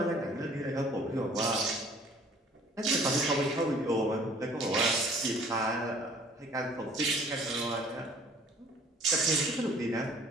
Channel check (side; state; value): both; normal; correlation 0.54